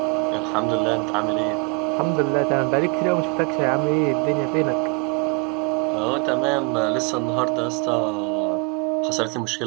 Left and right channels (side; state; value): left; quieter; 30.3 dB